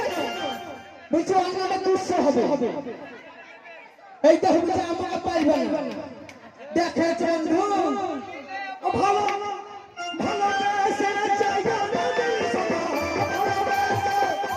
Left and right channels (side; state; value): both; identical; correlation 1.00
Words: এইটা হচ্ছে আমাকে পাইবে না। দেখেছ বন্ধু ভালো ভালো